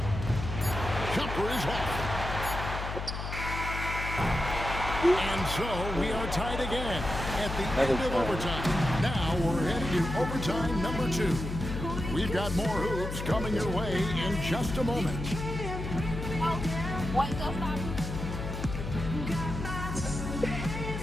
Jumper is off. And so we are tied again at the end of overtime. Now we're headed to overtime number 2. We've got more hoops coming your way in just a moment.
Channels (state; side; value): noise; left; hum, 5 dB below the sound